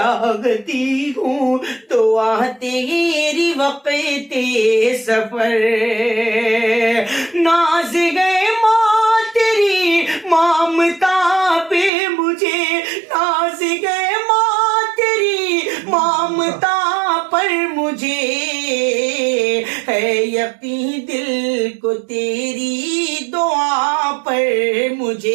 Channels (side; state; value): left; drops out; at 11.9 s